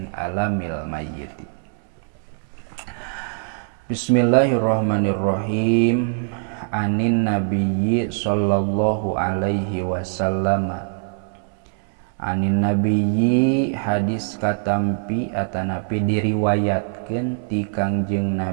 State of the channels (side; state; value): left; silent; 64 dB below the other